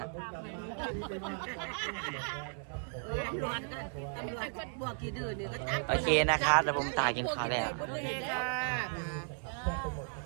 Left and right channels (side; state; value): left; silent; 54 dB below the other